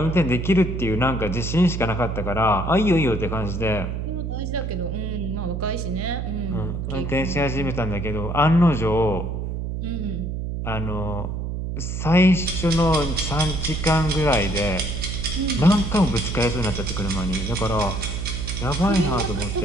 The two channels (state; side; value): noise; right; hum, 3 dB below the sound